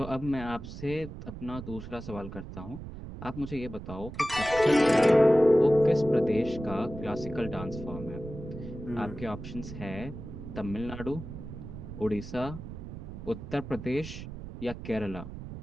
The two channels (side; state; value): right; noise; rumble, 11 dB below the sound